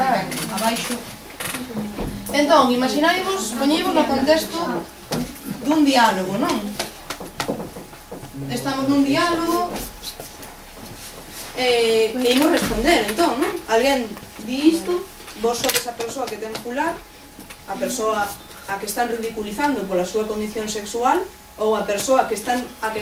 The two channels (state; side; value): identical; both; correlation 1.00